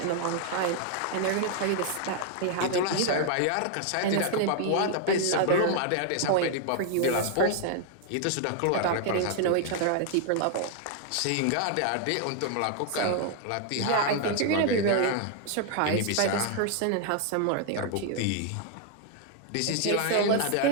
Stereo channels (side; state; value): both; different; correlation 0.00